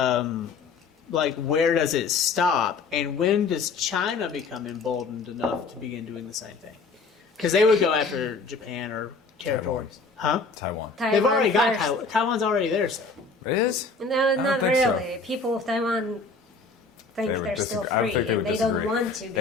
Where does it stop? And when does China become emboldened enough to begin doing the same thing? Because they would go after Japan or territories. Huh? Taiwan. They've already Taiwan got first. Taiwan. Taiwan's already there, so. It is? No, don't not think so. really. People of Taiwan think They they're would still disagree. I think free, they and would they don't disagree. want to They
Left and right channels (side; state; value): right; quieter; 4.2 dB